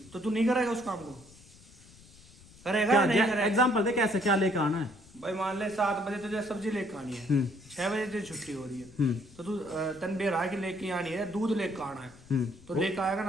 तो तू नहीं करेगा उस काम को? करेगा या नहीं करेगा? एग्जाम्पल दे, कैसे क्या लेकर आना है? भाई मान ले 7 बजे तुझे सब्जी लेकर आनी है, 6 बजे तुझे छुट्टी हो रही है, तो तू तन बेरा की लेके आनी है, दूध लेकर आना है, तो लेकर आएगा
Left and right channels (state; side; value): noise; left; rumble, 23 dB below the sound